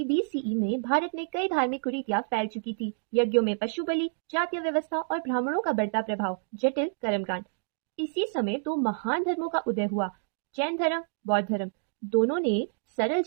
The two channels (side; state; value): left; silent; digital silence